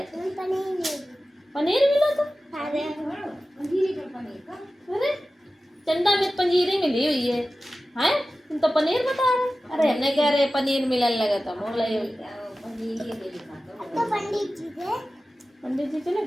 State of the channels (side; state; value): both; normal; correlation 0.95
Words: थे। पनीर मिला था? अरे चंदा में पंजीरी मिली हुई है, हैं तुम तो पनीर बता रहे। अरे हमने कह रहे पनीर मिलने लगे तो मोला ही पंडित जी चले